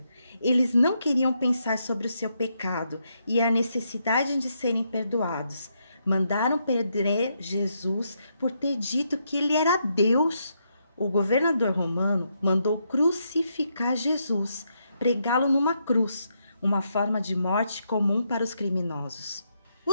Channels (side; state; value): both; inverted; correlation -0.79